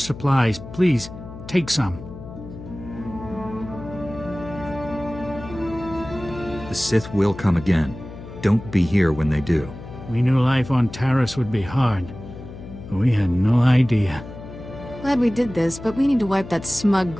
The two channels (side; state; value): left; noise; hum, 13 dB below the sound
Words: Please, take some. The Sith will come again. Don't be here when they do. We knew life on Taris would be hard, but we had no idea. Glad we did this, but we need to wipe that smug